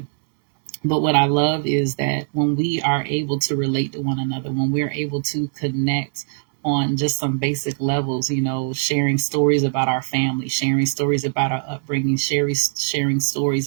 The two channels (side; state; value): left; silent; 62 dB below the other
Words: but what I love is that when we are able to relate to one another, when we're able to connect on just some basic levels, sharing stories about our family, sharing stories about our upbringing, sharing stories